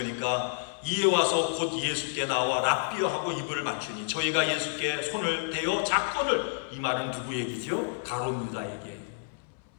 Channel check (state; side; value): silent; right; 58 dB below the other